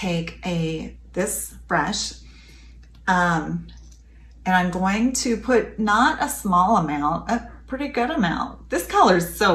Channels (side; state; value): both; identical; correlation 1.00